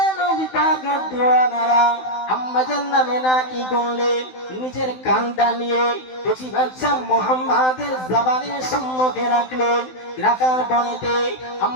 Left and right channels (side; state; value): right; late; 16 ms